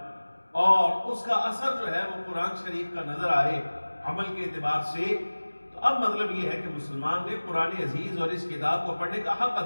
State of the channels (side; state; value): both; inverted; correlation -1.00